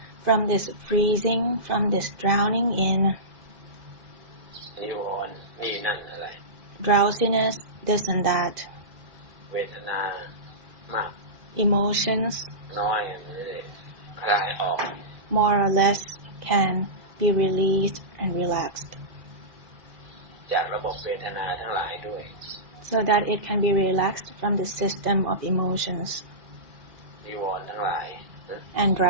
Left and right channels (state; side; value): late; left; 2.0 ms